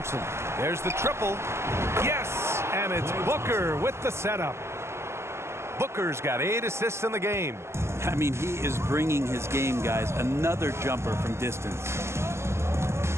There's the triple. Yes! And it's Booker with the setup. Booker's got 8 assists in the game. I mean, he is bringing his game, guys. Another jumper from distance.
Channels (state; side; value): late; left; 0.13 ms